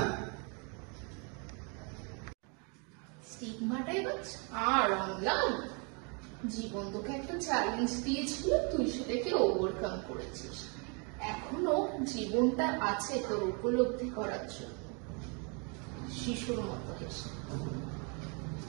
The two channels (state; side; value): quieter; left; 34.6 dB